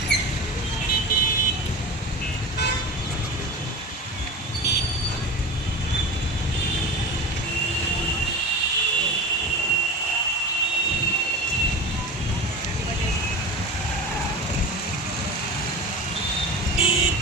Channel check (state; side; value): normal; both; correlation 0.31